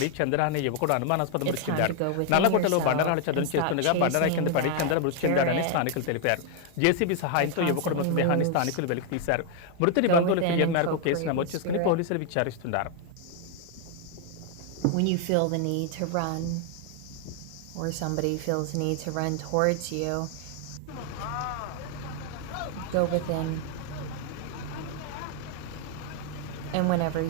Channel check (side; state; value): both; different; correlation 0.00